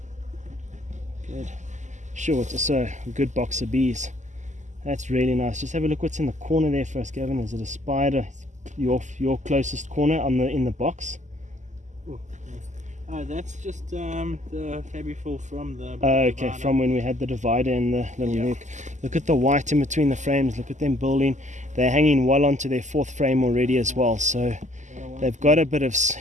good. Sure, it's also a good box of bees. That's really nice. Just have a look what's in the corner there for us, Gavin. Is it a spider? Your closest corner in the box? That's just the Fabiful from the okay, divider. From when we had the divider and the little nuke. Look at the white in between the frames. Look at them building. They're hanging well onto their 4th frame already as well. So they've got a bit of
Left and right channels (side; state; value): left; late; 0.34 ms